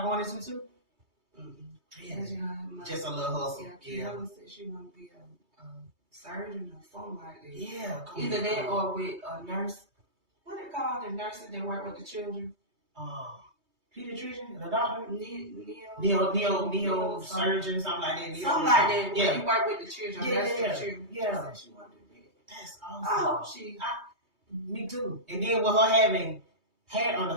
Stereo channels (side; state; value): left; late; 2.3 ms